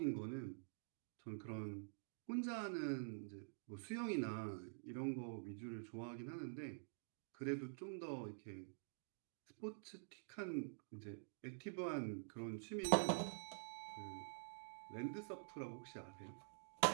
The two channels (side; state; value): left; silent; digital silence